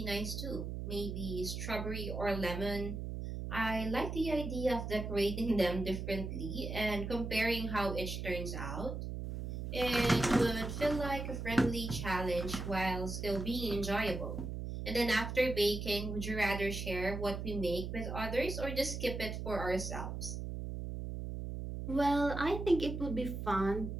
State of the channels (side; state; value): right; noise; hum, 5 dB below the sound